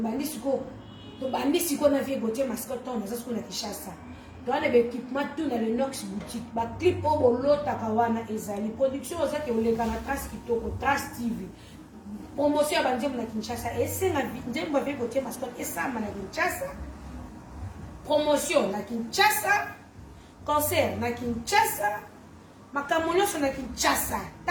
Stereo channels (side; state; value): both; identical; correlation 1.00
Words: siko na vie Gauthier mascotte on ça ce qu'on a Kinshasa dans les équipements tout dans le Nox boutique ba clip au bolota kawana ezali production ça que oleka na Trace kitoko Trace TV promotion bandi na Kinshasa et c'est na ndembo vie Gauthier mascotte et ça na Kinshasa promotion na Kinshasa concert na Kinshasa makambo nyonso na Kinshasa